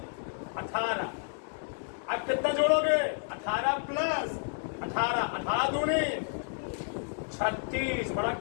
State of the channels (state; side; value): silent; right; digital silence